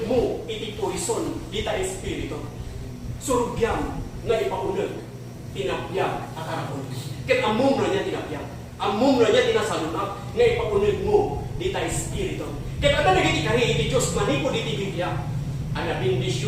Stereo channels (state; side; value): identical; both; correlation 1.00